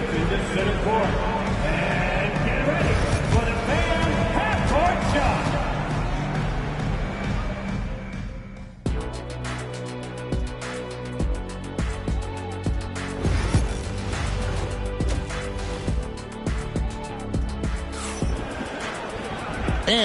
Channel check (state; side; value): identical; both; correlation 1.00